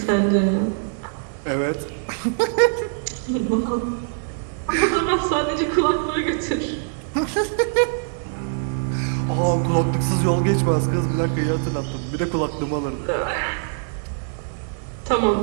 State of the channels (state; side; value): silent; left; 61 dB below the other